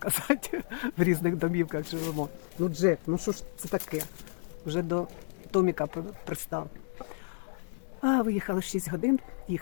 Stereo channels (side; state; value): right; silent; digital silence